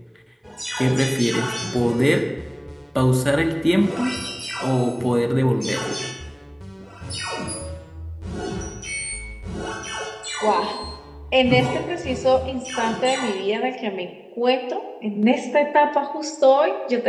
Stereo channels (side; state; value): both; identical; correlation 1.00